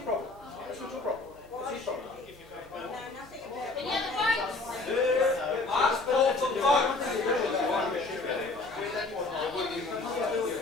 problem. That's not your problem. That's his problem. Any other votes? Ask Paul for vote.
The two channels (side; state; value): right; quieter; 3.4 dB